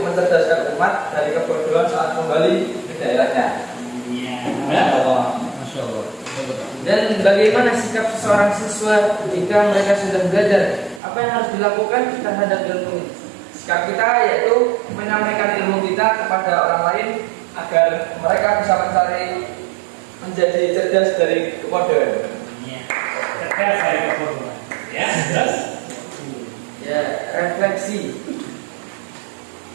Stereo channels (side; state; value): left; drops out; at 11.0 s